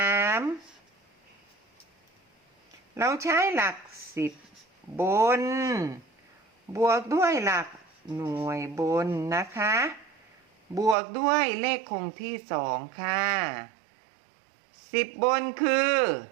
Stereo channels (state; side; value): drops out; left; at 11.0 s